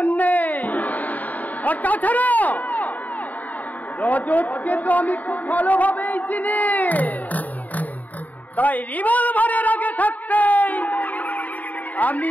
নেই। আর তাছাড়া রজতকে তো আমি খুব ভালোভাবেই চিনি, তাই রিভলভারের আগে থাকতেই আমি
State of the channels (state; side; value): late; right; 0.077 ms